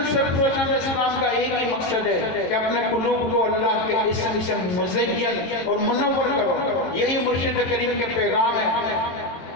سرفروشان اسلام کا ایک ہی مقصد ہے کہ اپنے قلوب کو اللہ کے اسم سے مزین اور منور کرو، یہی مرشد کریم کے پیغام ہے۔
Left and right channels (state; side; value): late; right; 22 ms